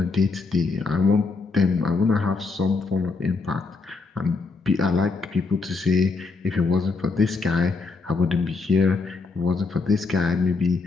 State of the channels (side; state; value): right; quieter; 4.1 dB